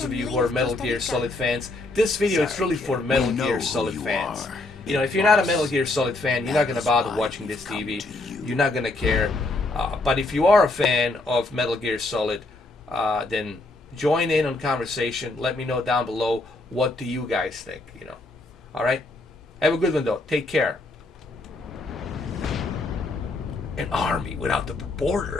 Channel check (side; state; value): right; quieter; 3.0 dB